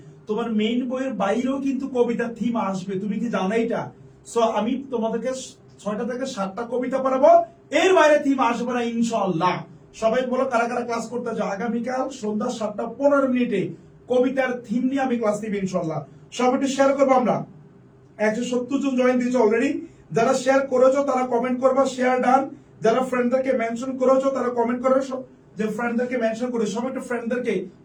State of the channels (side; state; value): both; identical; correlation 1.00